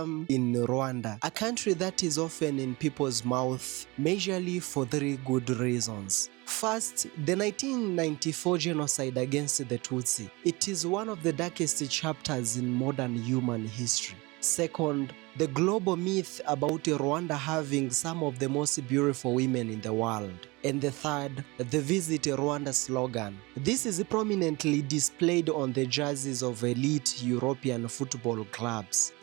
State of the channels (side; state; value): left; quieter; 24.3 dB